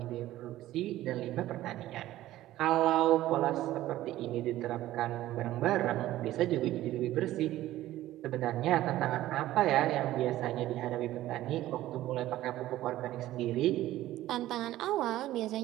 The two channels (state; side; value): quieter; left; 14.9 dB